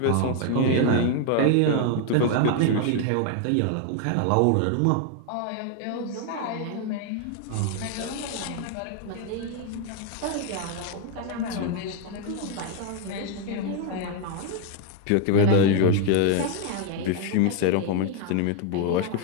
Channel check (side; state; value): both; different; correlation 0.01